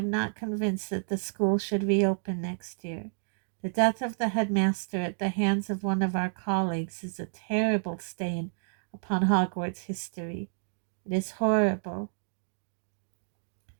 not convinced that the school should reopen next year. The death of the headmaster at the hands of one of our colleagues is a terrible stain upon Hogwarts history. It is horrible."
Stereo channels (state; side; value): silent; left; digital silence